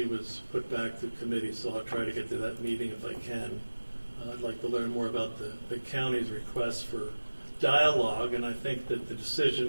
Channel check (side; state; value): both; inverted; correlation -1.00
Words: was put back to committee, so I'll try to get to that meeting if I can. I'd like to learn more about the county's request for dialogue, and I think that the